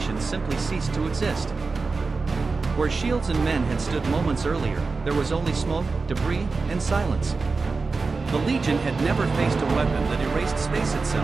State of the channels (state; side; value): quieter; left; 4.1 dB